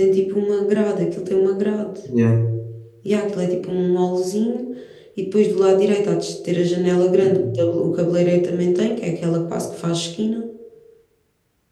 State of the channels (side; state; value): both; identical; correlation 1.00